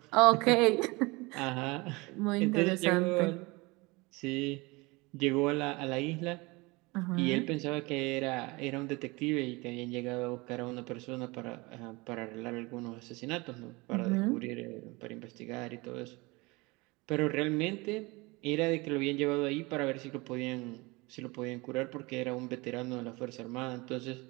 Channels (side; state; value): left; quieter; 24.7 dB